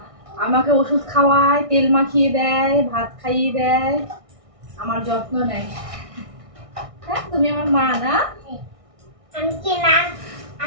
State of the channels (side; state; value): left; late; 1.6 ms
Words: আমাকে ওষুধ খাওয়ায়, তেল মাখিয়ে দেয়, ভাত খাইয়ে দেয়, আমার যত্ন নেয়। হ্যাঁ, তুমি আমার মা না?